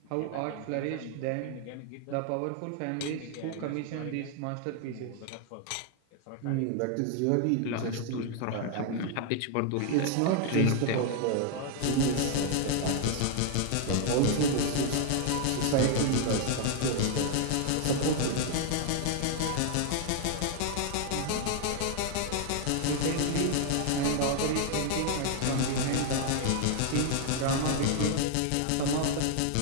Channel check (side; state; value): both; different; correlation 0.00